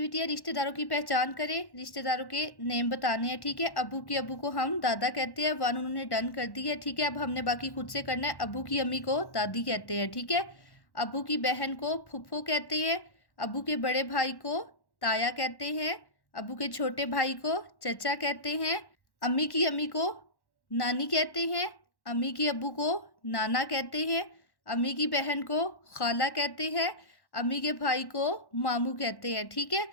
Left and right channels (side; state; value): right; late; 1.1 ms